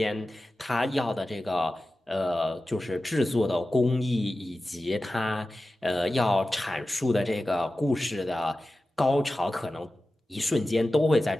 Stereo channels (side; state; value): both; normal; correlation 0.94